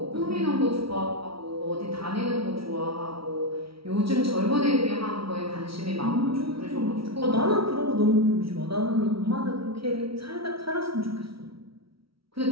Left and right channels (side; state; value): left; late; 0.75 ms